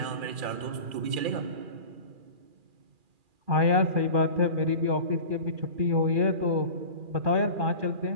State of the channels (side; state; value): left; late; 2.4 ms